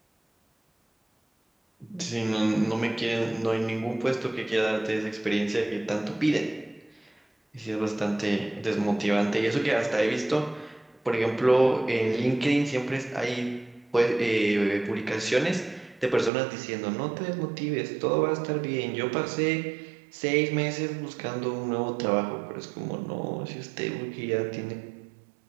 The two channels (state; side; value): drops out; left; at 16.3 s